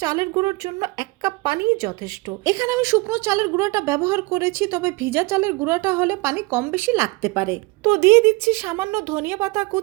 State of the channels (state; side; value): quieter; left; 25.2 dB